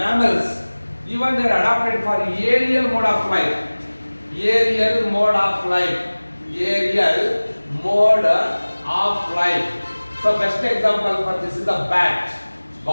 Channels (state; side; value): inverted; both; correlation -1.00